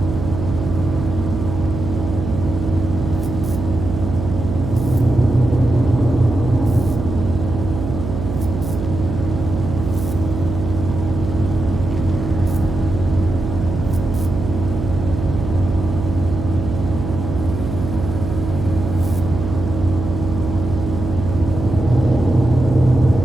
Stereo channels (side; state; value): right; noise; hum, 5 dB below the sound